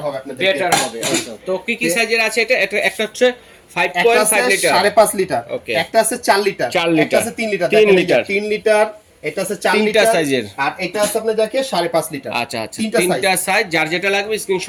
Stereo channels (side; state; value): both; identical; correlation 1.00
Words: হবে, আপনাদের বেটার হবে। তো কি সাইজের আছে এটা? একটা হচ্ছে 5.5 লিটার, 5.5 লিটার, একটা আছে 4 লিটার, একটা আছে 3 লিটার, 3 লিটার, এটা আছে 4 লিটার সাইজের, আর এটা আছে আপনি যাকে 5.5 লিটার। আচ্ছা, তিনটা সাইজ, যার যেটা লাগবে